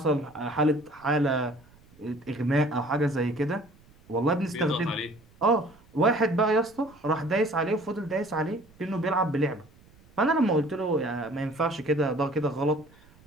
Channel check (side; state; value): right; noise; rumble, 28 dB below the sound